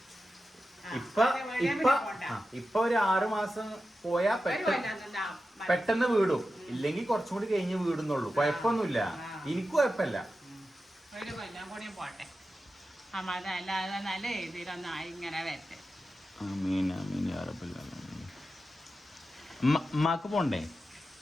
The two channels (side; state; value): both; normal; correlation 0.91